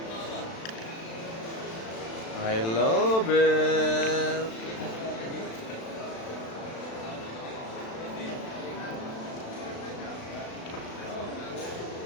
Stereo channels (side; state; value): right; late; 36 ms